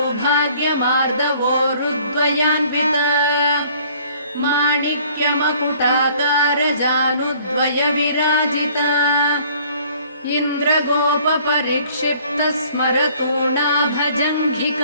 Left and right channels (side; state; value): both; inverted; correlation -0.56